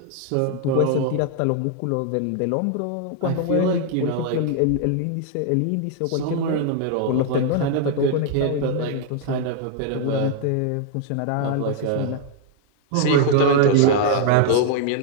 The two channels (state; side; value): different; both; correlation 0.00